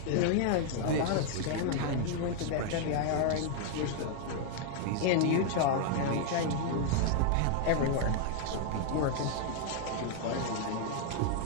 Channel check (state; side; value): different; both; correlation 0.00